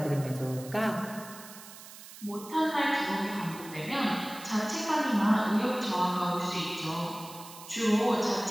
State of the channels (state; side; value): noise; right; hiss, 16 dB below the sound